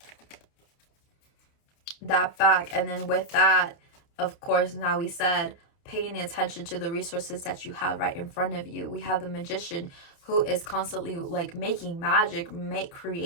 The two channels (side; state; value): right; late; 30 ms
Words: And then with that, of course, now we said paying attention to the resources that you have right in front of you. We have the Magician, who is constantly like making magic,